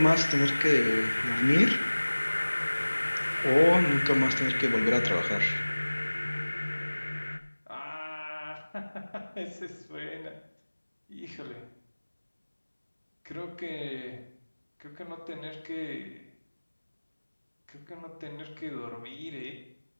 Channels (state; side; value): inverted; both; correlation -1.00